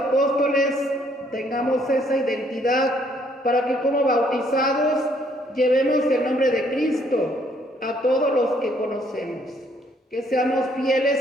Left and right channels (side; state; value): both; normal; correlation 0.66